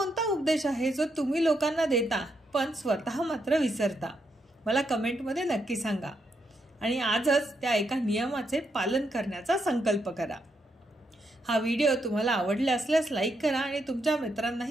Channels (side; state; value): both; normal; correlation 0.80